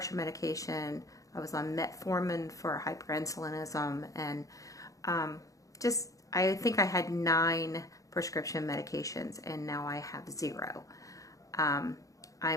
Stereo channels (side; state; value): right; late; 0.16 ms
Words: medication. I was on metformin for hyperinsulinism, and I think I had 9 prescription medications, and now I have 0.